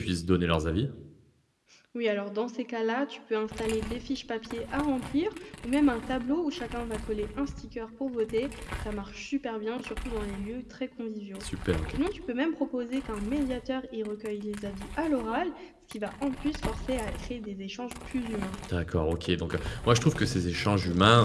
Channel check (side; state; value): both; identical; correlation 1.00